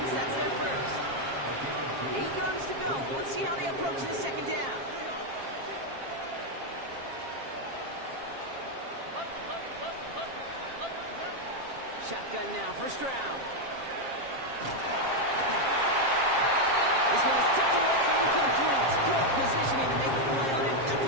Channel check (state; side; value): late; left; 7.4 ms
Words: That's their first. 8 yards to go. Let's see how they approach this 2nd down. Shotgun now, 1st round. This one is tipped away and incomplete. Good positioning to make the play on it. That